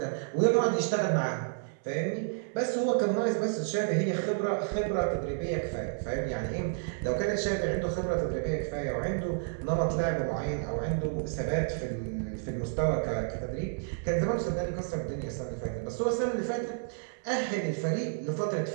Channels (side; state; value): left; silent; 57 dB below the other